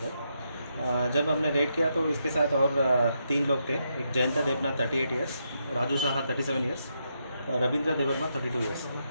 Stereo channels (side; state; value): both; inverted; correlation -0.81